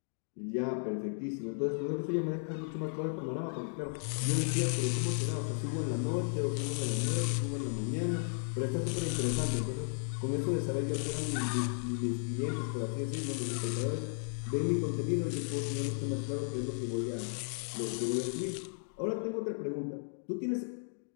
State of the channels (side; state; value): right; silent; digital silence